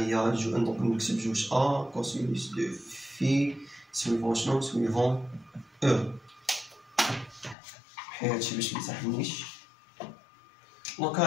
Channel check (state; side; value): drops out; right; at 7.6 s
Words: دونك نكتب جوج ا كوسينوس دو في سويفون شنو سويفون او. حيت هادشي باش ميسحنيش. دونك